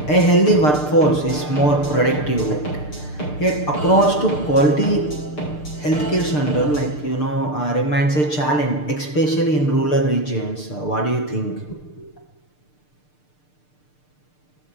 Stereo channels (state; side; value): late; right; 6.7 ms